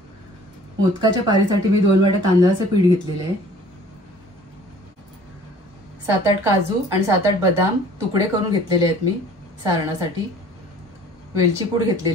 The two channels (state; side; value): normal; both; correlation 0.51